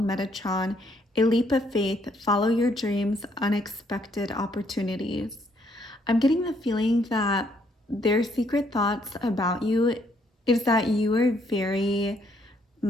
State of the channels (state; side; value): normal; both; correlation 0.70